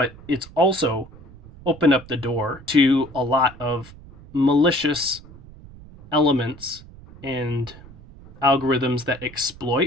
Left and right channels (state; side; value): noise; right; rumble, 19 dB below the sound